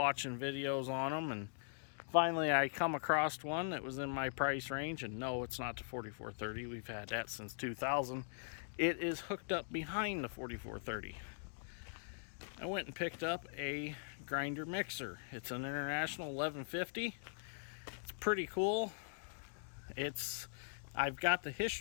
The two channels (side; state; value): right; silent; digital silence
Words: videos on them, and finally I come across one that was in my price range. And no, it's not the 4430. We've had that since 2000. It is hooked up behind the 4430. I went and picked up a grinder mixer. It's an International 1150. It's pretty cool. I've got the